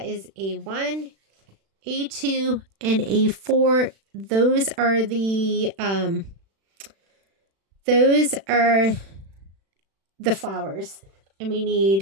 is A1, A2, and A4. Those are the flowers. And we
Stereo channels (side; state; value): left; late; 36 ms